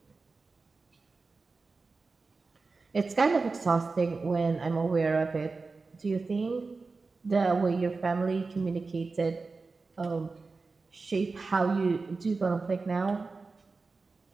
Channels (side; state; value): left; quieter; 4.0 dB